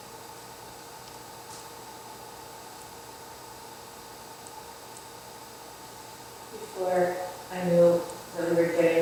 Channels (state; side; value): identical; both; correlation 1.00